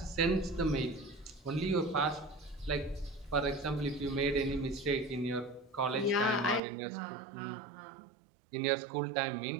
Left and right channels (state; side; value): drops out; left; at 6.6 s